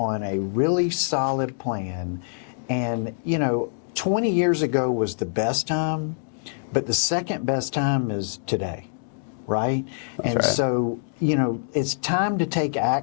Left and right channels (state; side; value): silent; right; digital silence